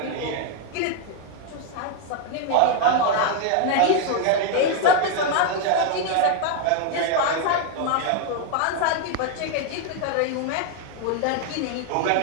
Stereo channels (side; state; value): both; different; correlation 0.00